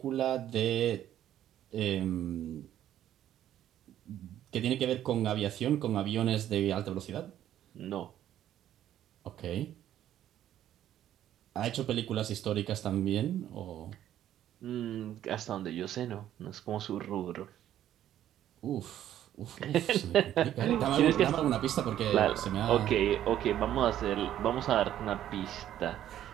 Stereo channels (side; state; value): left; quieter; 11.6 dB